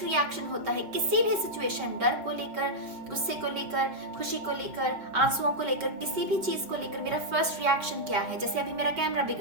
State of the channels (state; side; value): late; left; 5.1 ms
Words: रिएक्शन होता है किसी भी सिचुएशन, डर को लेकर, गुस्से को लेकर, खुशी को लेकर, आंसुओं को लेकर, किसी भी चीज को लेकर मेरा फर्स्ट रिएक्शन क्या है। जैसे अभी मेरा कैमरा